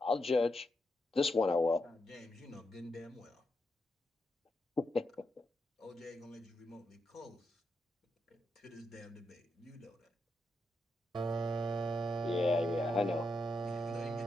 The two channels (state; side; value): normal; both; correlation 0.83